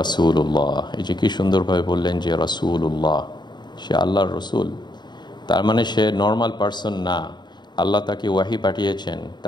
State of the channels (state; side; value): late; right; 0.21 ms